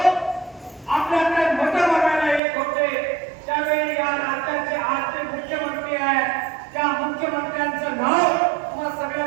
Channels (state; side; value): drops out; left; at 2.4 s